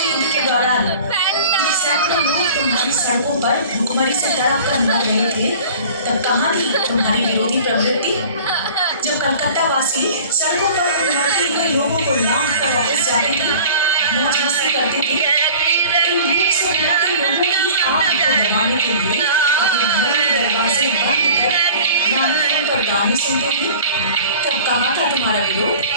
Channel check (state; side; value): inverted; both; correlation -0.44